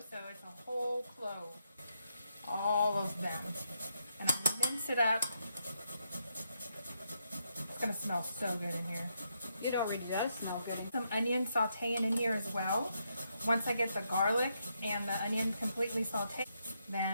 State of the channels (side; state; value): both; inverted; correlation -0.79